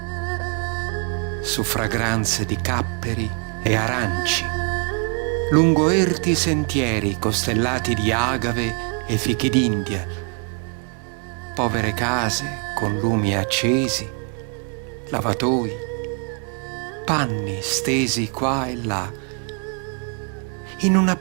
su fragranze di capperi e aranci, lungo erti sentieri costellati di agave e fichi d'India, povere case con lumi accesi, lavatoi, panni stesi qua e là, in una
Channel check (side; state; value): left; quieter; 38.5 dB